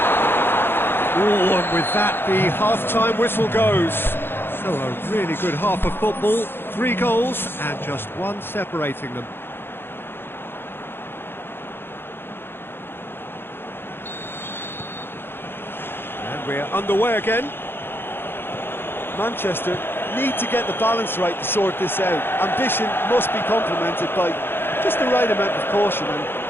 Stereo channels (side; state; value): right; late; 0.10 ms